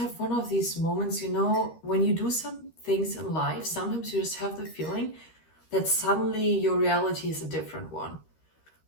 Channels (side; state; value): right; late; 13 ms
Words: one of these moments, when you do some things in life, sometimes you just have the feeling that suddenly your reality is a different one.